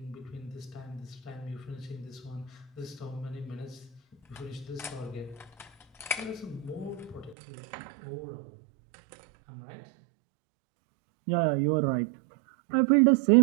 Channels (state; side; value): drops out; left; at 7.4 s